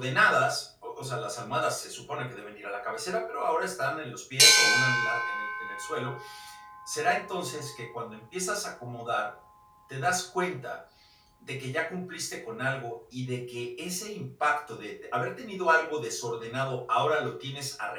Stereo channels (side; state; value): both; identical; correlation 1.00